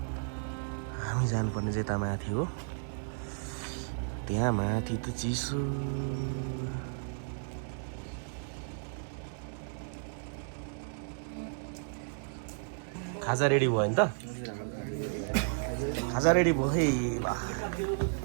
हामी जानुपर्ने चाहिँ यता माथि हो त्यहाँ माथि त चिसो खाजा रेडी भयो नि त खाजा रेडी भयो है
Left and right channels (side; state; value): left; silent; digital silence